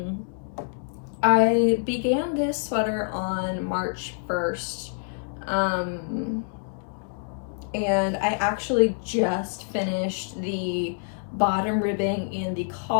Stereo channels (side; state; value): right; silent; 61 dB below the other